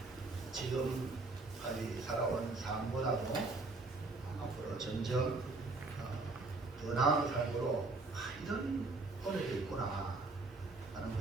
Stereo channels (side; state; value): left; quieter; 3.5 dB